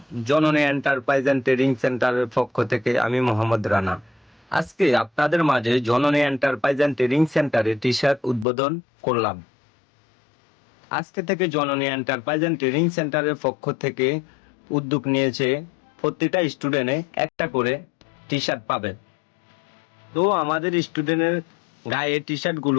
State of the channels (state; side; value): drops out; right; at 8.5 s